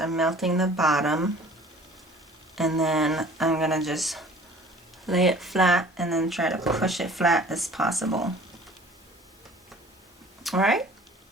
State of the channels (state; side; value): normal; both; correlation 0.48